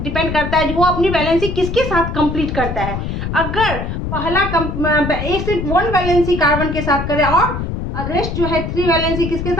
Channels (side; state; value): left; noise; rumble, 4 dB below the sound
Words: करता है, जो वो अपनी वैलेंसी किसके साथ कंप्लीट करता है। अगर पहला एक से 1 वैलेंसी कार्बन के साथ करे और रेस्ट जो है 3 वैलेंसी किसके